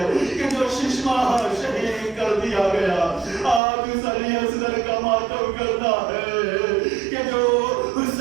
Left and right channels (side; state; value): left; drops out; at 3.6 s